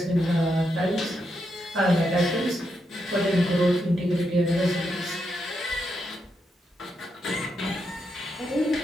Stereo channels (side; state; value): both; normal; correlation 0.82